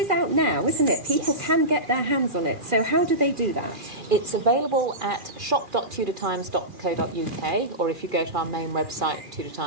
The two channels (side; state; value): left; late; 2.4 ms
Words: out now, isn't it? People can get their hands on it. So how do they do that? It's available at shop.tudortimes.co.uk, or if you go to our main website, Tudor